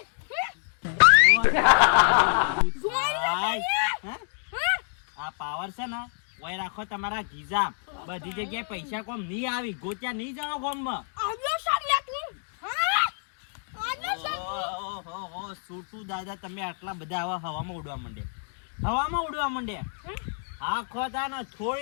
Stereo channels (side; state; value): right; silent; 60 dB below the other